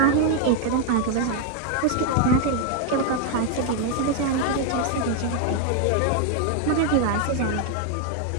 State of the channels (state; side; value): different; both; correlation 0.00